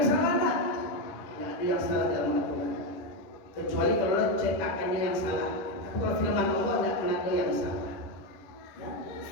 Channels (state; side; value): late; right; 10 ms